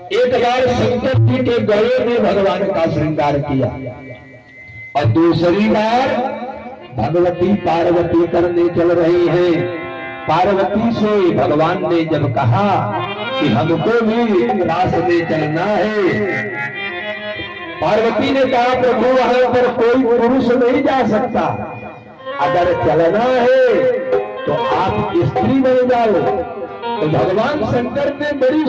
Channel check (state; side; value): identical; both; correlation 1.00